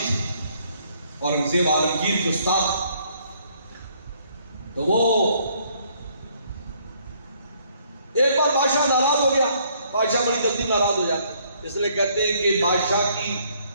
اورنگزیب عالمگیر کے استاد۔ تو وہ ایک بار بادشاہ ناراض ہو گیا، بادشاہ بڑی جلدی ناراض ہو جاتا، اس لیے کہتے ہیں کہ بادشاہ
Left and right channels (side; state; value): both; inverted; correlation -0.66